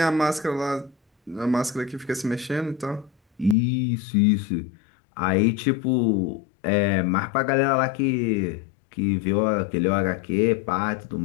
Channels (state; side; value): drops out; right; at 3.6 s